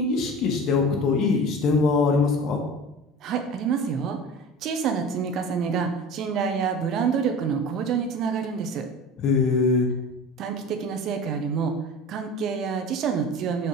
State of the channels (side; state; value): both; normal; correlation 0.35